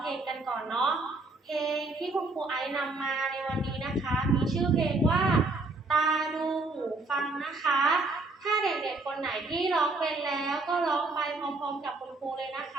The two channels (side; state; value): left; quieter; 3.3 dB